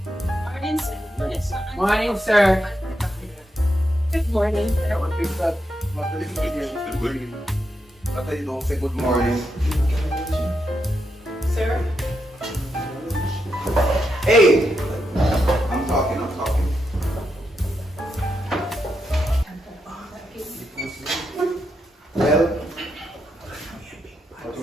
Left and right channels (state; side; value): normal; both; correlation 0.83